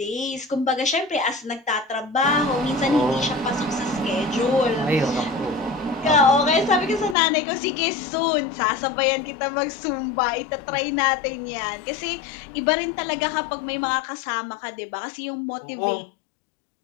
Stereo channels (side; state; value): right; drops out; at 7.2 s